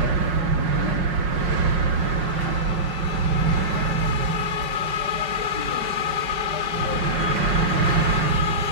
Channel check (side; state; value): left; late; 5.1 ms